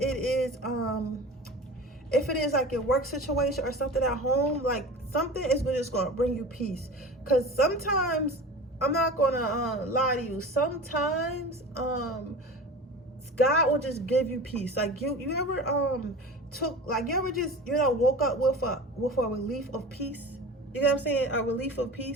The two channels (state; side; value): normal; both; correlation 0.34